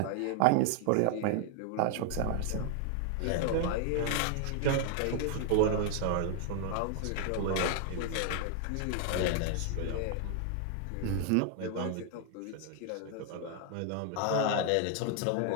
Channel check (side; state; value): both; different; correlation 0.00